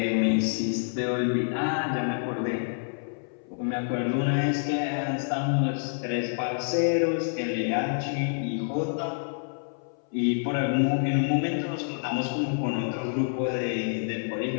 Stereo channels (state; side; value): silent; right; 60 dB below the other